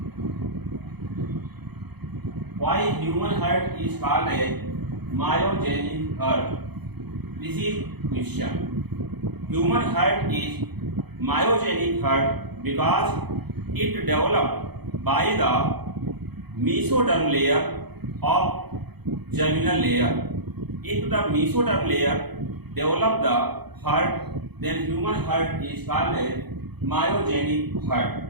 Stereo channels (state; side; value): late; left; 0.98 ms